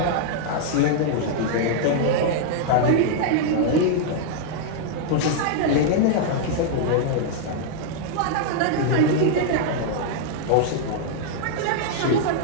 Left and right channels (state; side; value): different; both; correlation -0.01